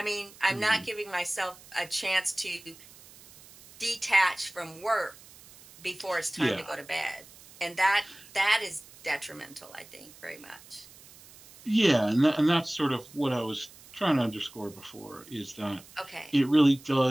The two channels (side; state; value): right; noise; hiss, 22 dB below the sound